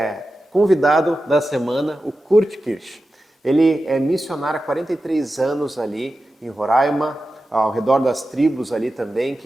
convidado da semana, o Kurt Kirsch. Ele é missionário há 43 anos ali em Roraima, ao redor das tribos ali também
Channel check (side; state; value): both; normal; correlation 0.92